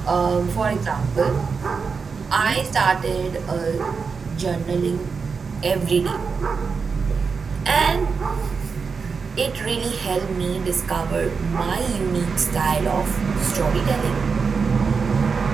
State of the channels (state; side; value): quieter; left; 5.3 dB